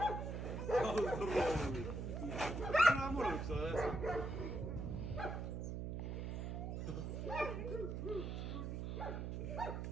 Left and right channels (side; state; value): right; noise; hum, 3 dB below the sound